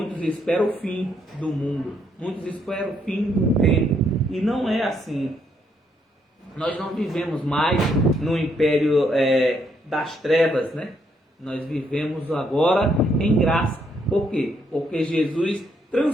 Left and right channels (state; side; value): normal; both; correlation 0.73